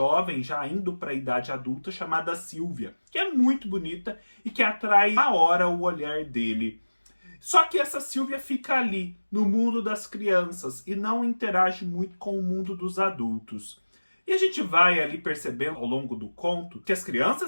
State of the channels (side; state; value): both; inverted; correlation -1.00